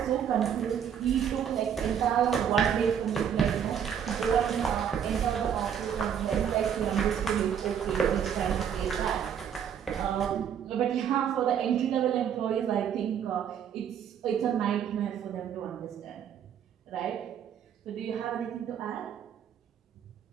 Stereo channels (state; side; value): quieter; left; 8.5 dB